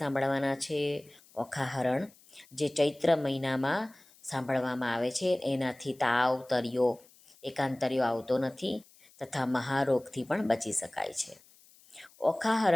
છે ઓખાહરણ, જે ચૈત્ર મહિનામાં સાંભળવામાં આવે છે. એનાથી તાવ, તરિયો, એકાંતરિયો આવતો નથી તથા મહારોગથી પણ બચી શકાય છે.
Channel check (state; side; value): noise; left; hiss, 27 dB below the sound